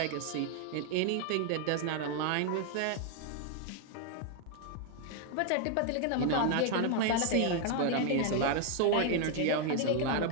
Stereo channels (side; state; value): both; different; correlation 0.00